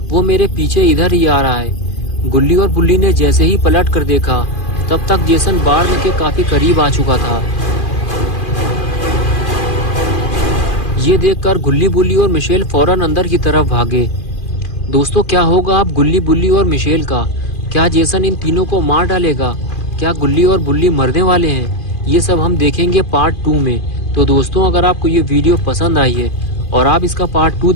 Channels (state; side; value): late; right; 2.4 ms